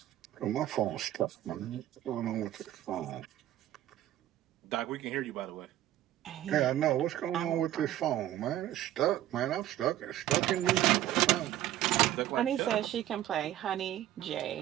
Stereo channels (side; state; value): left; quieter; 13.3 dB